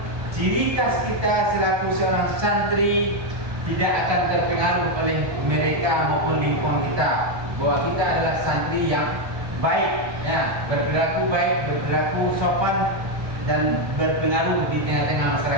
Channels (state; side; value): late; left; 1.3 ms